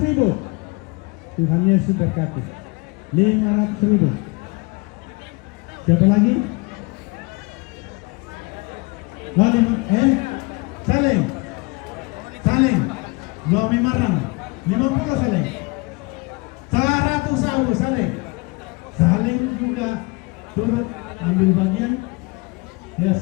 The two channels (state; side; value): quieter; right; 26.8 dB